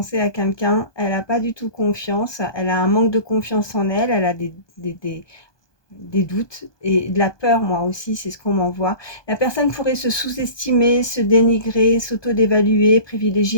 à quelqu'un. Elle n'a pas du tout confiance. Elle a un manque de confiance en elle. Elle a des doutes et de la peur, moi aussi, c'est ce qu'on m'envoie. La personne pourrait se sous-estimer, se dénigrer, s'auto-dévaluer,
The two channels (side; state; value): right; late; 1.2 ms